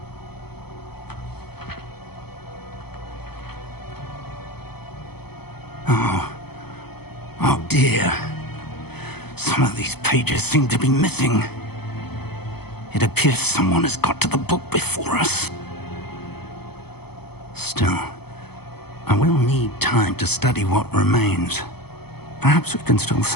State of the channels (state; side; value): late; right; 0.97 ms